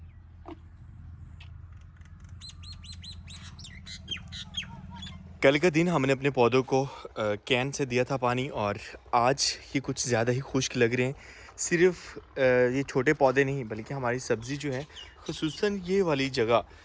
कल का दिन हमने अपने पौधों को कैन से दिया था पानी, और आज ये कुछ ज़्यादा ही खुश्क लग रहे हैं। सिर्फ ये छोटे पौधे नहीं, बल्कि हमारी सब्ज़ी जो है, खुसूसन ये वाली जगह,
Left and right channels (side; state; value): both; identical; correlation 1.00